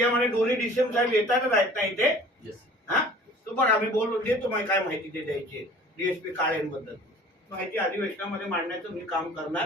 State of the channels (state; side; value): normal; both; correlation 0.47